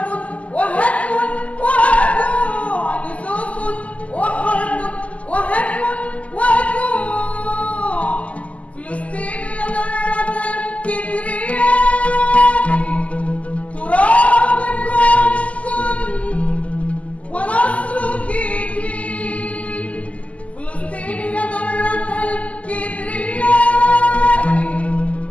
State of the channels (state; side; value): late; right; 0.069 ms